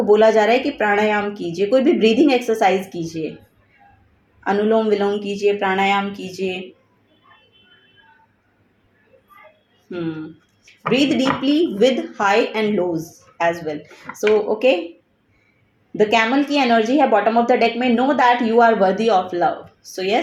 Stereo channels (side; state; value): both; identical; correlation 1.00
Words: बोला जा रहा है कि प्राणायाम कीजिए, कोई भी ब्रीदिंग एक्सरसाइज कीजिए, अनुलोम विलोम कीजिए, प्राणायाम कीजिए। Breathe deeply with high and lows as well. So okay, the camel की एनर्जी है बॉटम ऑफ द डेक में, know that you are worthy of love. So